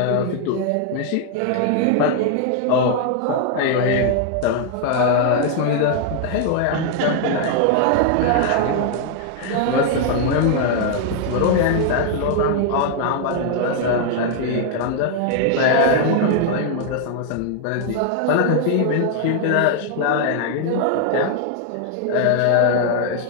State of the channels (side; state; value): both; different; correlation 0.00